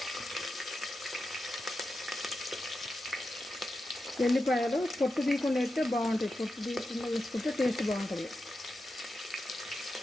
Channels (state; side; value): normal; both; correlation 0.90